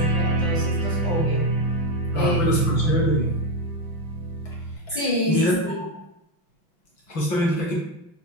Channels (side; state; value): right; late; 5.9 ms